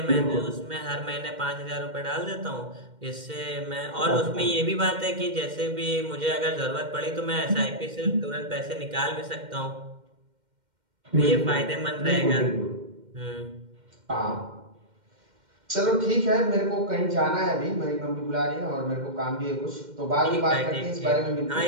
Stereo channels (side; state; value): left; late; 2.1 ms